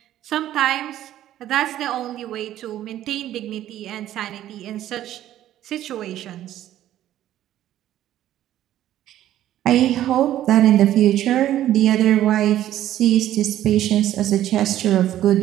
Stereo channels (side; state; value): left; quieter; 12.7 dB